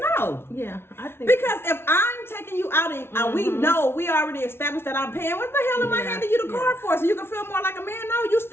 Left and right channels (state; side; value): late; right; 0.12 ms